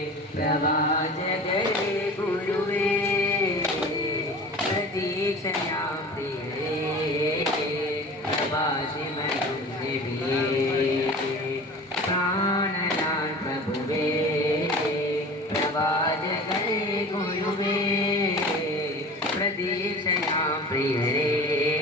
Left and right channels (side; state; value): both; normal; correlation 0.38